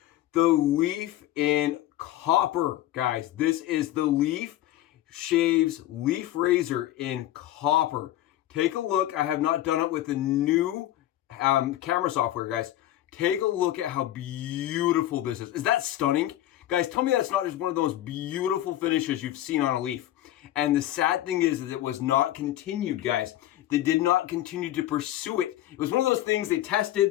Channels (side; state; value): right; quieter; 13.8 dB